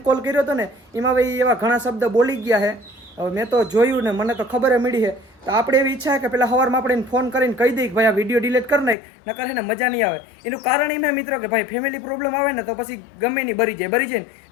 કોલ કર્યો હતો ને એમાં ભાઈ એવા ઘણા શબ્દ બોલી ગયા છે. હવે મેં તો જોયું ને મને તો ખબર મળી છે. તો આપણે એવી ઈચ્છા છે કે પેલા સવારમાં આપણે ફોન કરીને કહી દઈએ કે ભાઈ આ વિડીયો ડિલીટ કરી નાખ નકર છે ને મજા નહીં આવે. એનું કારણ એમ મિત્રો કે ભાઈ ફેમિલી પ્રોબ્લેમ આવે ને તો પછી ગમે નહીં બરી જાય ને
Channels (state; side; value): drops out; right; at 9.0 s